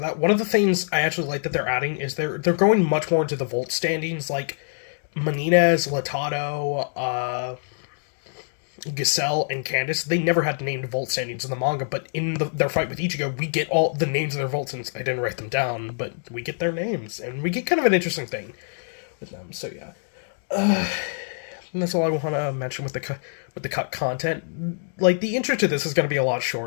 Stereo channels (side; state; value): right; silent; digital silence